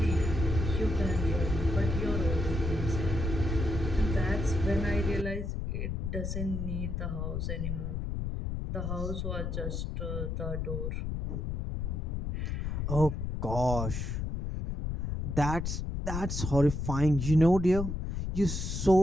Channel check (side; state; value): left; noise; rumble, 3 dB below the sound